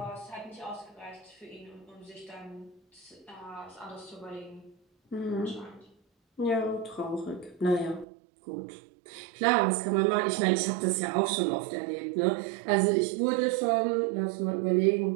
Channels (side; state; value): left; drops out; at 8.1 s